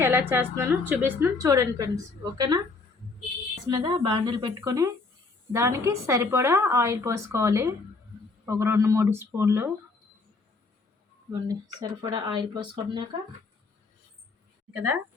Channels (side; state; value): right; quieter; 3.9 dB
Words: ఎలా చేస్తున్నానో చూపిస్తున్నాను. చూడండి ఫ్రెండ్స్, ఓకేనా. మీద బాండిల్ పెట్టుకొని దానికి సరిపడా ఆయిల్ పోసుకోవాలి. ఒక 2-3 స్పూన్లు ఇవ్వండి. సరిపడా ఆయిల్ పోసుకున్నాక కదా